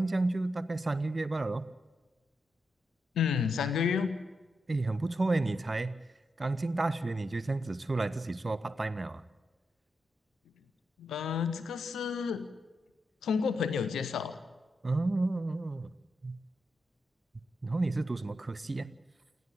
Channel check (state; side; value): normal; both; correlation 0.85